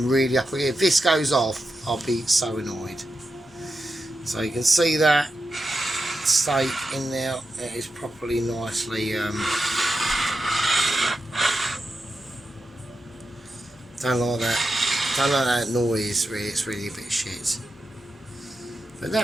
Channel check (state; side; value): normal; both; correlation 0.89